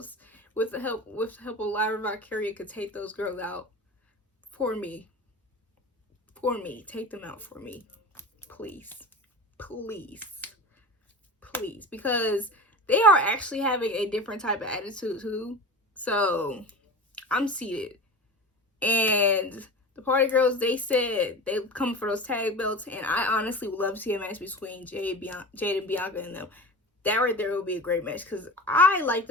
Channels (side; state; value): both; normal; correlation 0.31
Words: with the help of Lyra Valkyria, could take those girls out for me. Take them out for me. Please. Because they are actually having a different type of attitude too. So I'm seated. And the party girls, they said they come for those tag belts, and I honestly would love to see a match between Jade and Bianca and them. That right there would be a great match, because I like